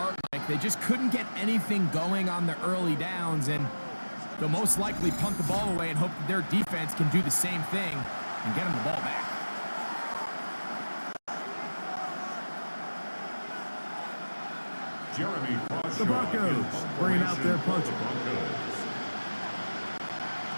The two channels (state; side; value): inverted; both; correlation -1.00